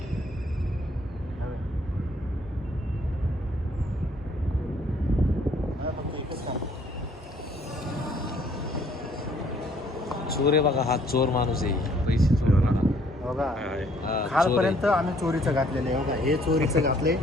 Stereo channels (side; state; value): both; normal; correlation 0.62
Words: चोर आहे बघा. हा चोर माणूस आहे. पैसे चोर बघा खालपर्यंत आम्ही चोरीचं घातलेलं आहे. बघा हे चोरीचं घातलंय.